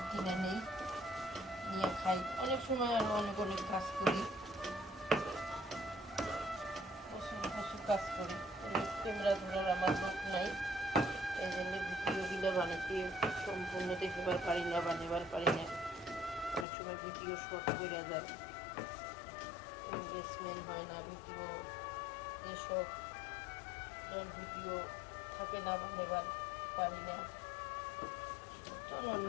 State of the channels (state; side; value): drops out; right; at 16.7 s